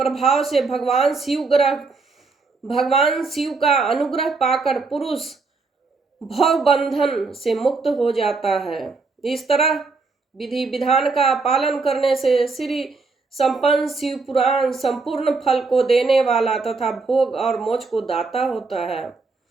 से भगवान शिव का अनुग्रह पाकर पुरुष भव बंधन से मुक्त हो जाता है। इस तरह विधि विधान का पालन करने से श्री संपन्न शिव पुराण संपूर्ण फल को देने वाला तथा भोग और मोक्ष को दाता होता है।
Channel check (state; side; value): quieter; left; 4.1 dB